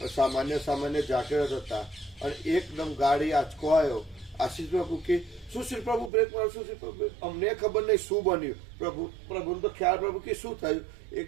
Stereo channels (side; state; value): left; drops out; at 6.1 s